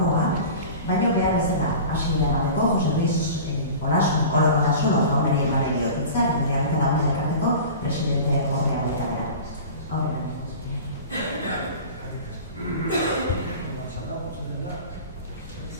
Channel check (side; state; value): both; inverted; correlation -0.37